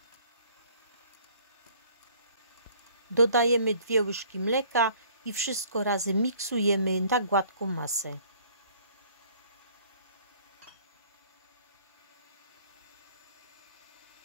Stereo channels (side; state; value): both; inverted; correlation -0.56